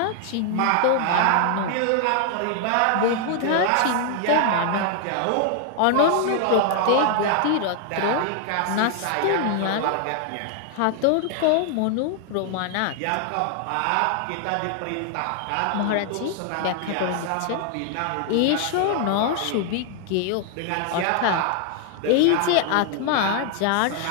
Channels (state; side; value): different; both; correlation 0.00